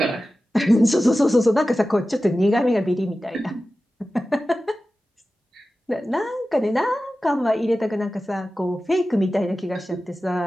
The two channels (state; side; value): normal; both; correlation 0.94